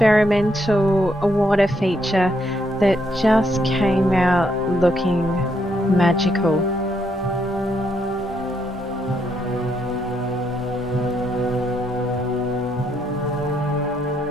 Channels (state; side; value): normal; both; correlation 0.75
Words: water feature that just came out looking magical.